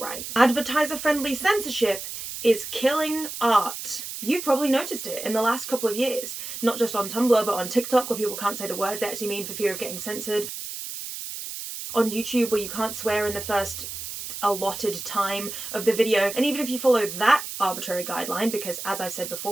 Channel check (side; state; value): right; noise; hiss, 8 dB below the sound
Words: Advertiser-friendly censorship is killing art. You've probably noticed it in the last couple of years, not just on Tumblr but on TikTok where people can't say the words they actually mean for fear of getting censored, on YouTube where you can't swear in the first allotted time of the video, and even if you follow that arbitrary guideline, because as I've said